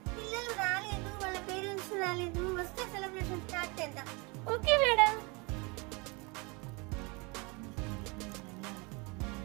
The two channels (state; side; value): quieter; left; 28.6 dB